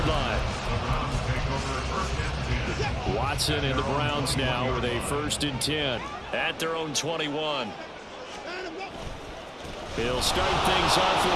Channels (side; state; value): both; identical; correlation 1.00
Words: line. Watson and the Browns now with a 1st and 10 at their own 21. He'll start things off with